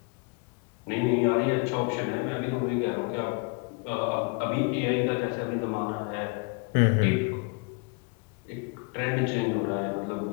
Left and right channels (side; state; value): right; quieter; 31.1 dB